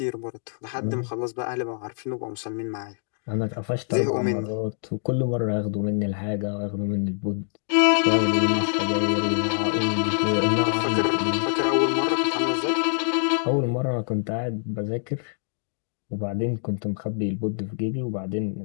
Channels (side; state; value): right; silent; digital silence